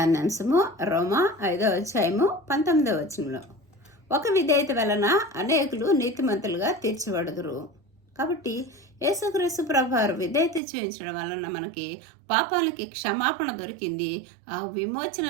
రోమా 5వ అధ్యాయము 19వ వచనంలో, ఒక విధేయత వలన అనేకులు నీతిమంతులుగా తీర్చబడుదురు. కాబట్టి యేసుక్రీస్తు ప్రభువారు విధేయత చూపించడం వలన మనకి పాపానికి క్షమాపణ దొరికింది. ఆ విమోచన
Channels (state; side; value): drops out; left; at 10.6 s